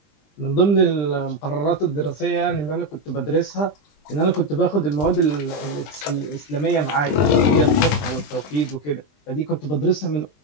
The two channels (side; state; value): right; late; 20 ms